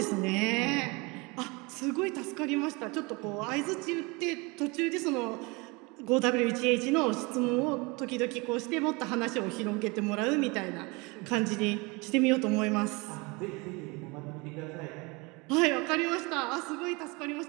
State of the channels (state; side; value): quieter; left; 26.8 dB